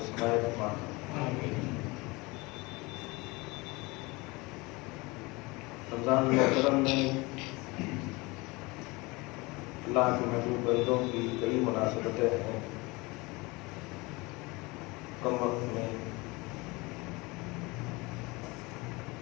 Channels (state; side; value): quieter; right; 24.3 dB